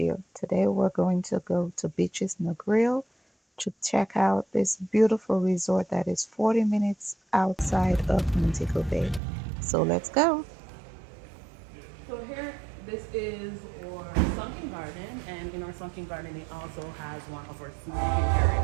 Today we're going to go to Beaches Negril to check out this beautiful resort that is 40 minutes outside of Montego Bay. So let's go. So here, this is our sunken garden, and in our sunken garden, it also has one of our smoking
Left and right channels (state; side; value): drops out; left; at 9.2 s